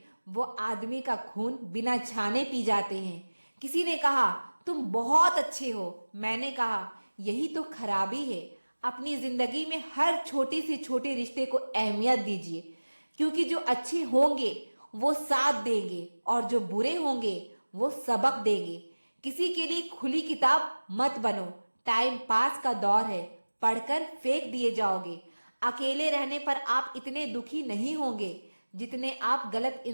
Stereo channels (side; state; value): both; inverted; correlation -1.00